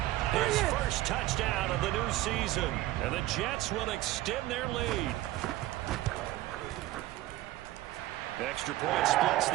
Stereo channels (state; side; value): quieter; left; 16.3 dB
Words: his first touchdown of the new season. And the Jets will extend their lead. Extra point splits